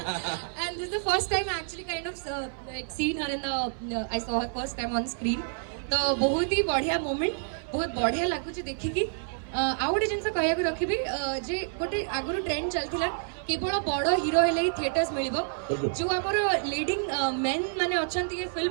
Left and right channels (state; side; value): silent; left; 59 dB below the other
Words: and this the first time actually kind of scene her in the I saw her first time on screen तो बहुत ही बढ़िया moment बहुत बढ़िया लगुच देखिकी आउ गोटे जिन कह रखी जे गोटे आगुरी ट्रेंड चलता केवल बड़ हीरो हेले ही थिएटर्स मिल जो आमर लीडिंग मेन माने अच्छा ये